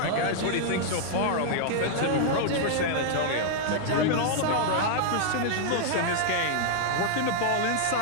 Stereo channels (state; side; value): different; both; correlation -0.01